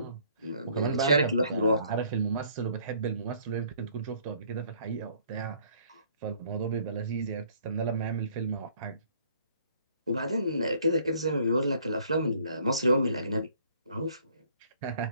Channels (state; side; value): inverted; both; correlation -0.60